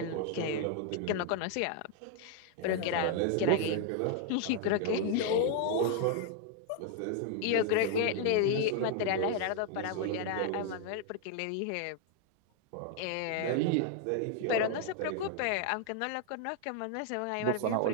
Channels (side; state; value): both; different; correlation 0.00